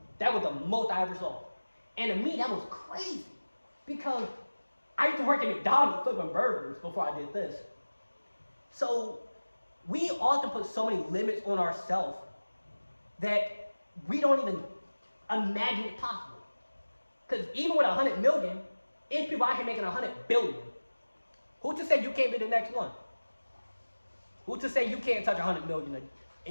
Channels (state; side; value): inverted; both; correlation -1.00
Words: That was the most I ever saw. And to me, that was crazy because I used to work at McDonald's flipping burgers before I did this. So we often put so many limits on ourselves that we don't even imagine it possible. Because even with 100 million, it's people out here making 100 billion. Who's to say you can't be the next one? Who's to say you can't touch 100 million